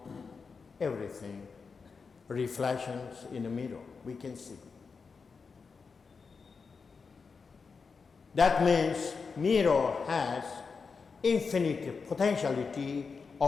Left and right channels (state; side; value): quieter; right; 5.1 dB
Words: everything, reflections in the mirror, we can see. That means mirror has infinite potentiality